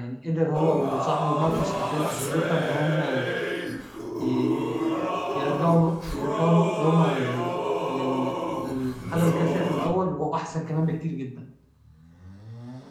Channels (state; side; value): identical; both; correlation 1.00